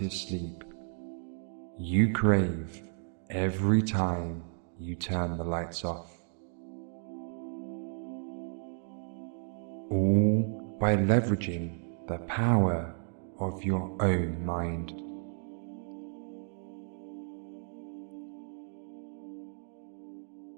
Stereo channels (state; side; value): silent; left; 56 dB below the other